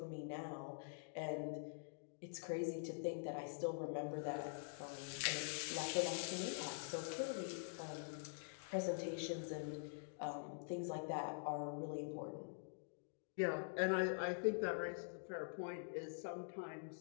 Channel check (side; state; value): right; silent; digital silence